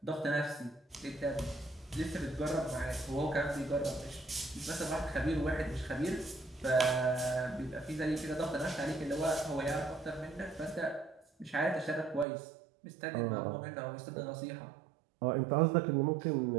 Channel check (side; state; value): left; drops out; at 12.2 s